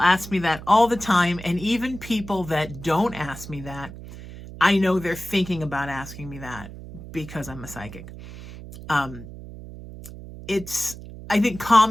me that all the time, and even people that don't ask me that, I know they're thinking about asking me that because I'm a psychic. It's, I think,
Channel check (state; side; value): noise; right; hum, 14 dB below the sound